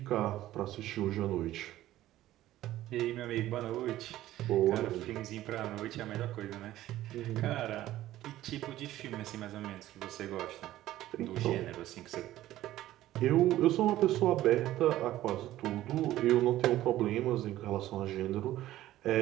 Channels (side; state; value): left; quieter; 14.5 dB